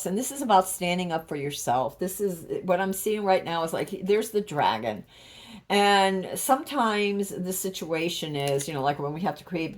and this is about standing up for yourself. This is what I'm seeing right now is like there's the dragon. And sometimes the situation is, like when we have to create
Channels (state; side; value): identical; both; correlation 1.00